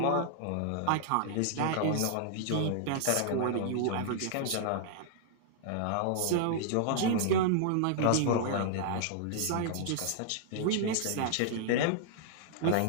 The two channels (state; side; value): different; both; correlation -0.01